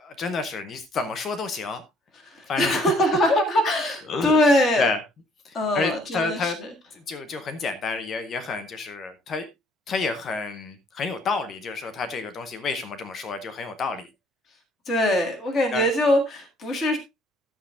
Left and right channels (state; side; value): normal; both; correlation 0.62